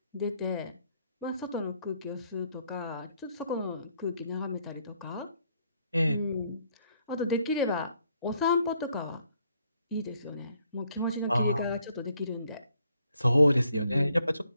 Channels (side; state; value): both; inverted; correlation -0.70